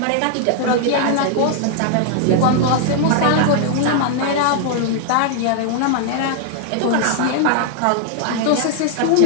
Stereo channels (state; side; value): different; both; correlation 0.00